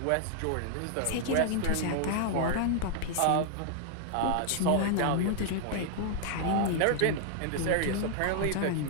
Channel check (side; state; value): both; different; correlation 0.00